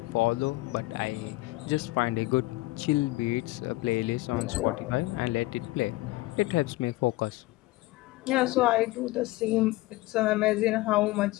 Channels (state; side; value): quieter; right; 19.7 dB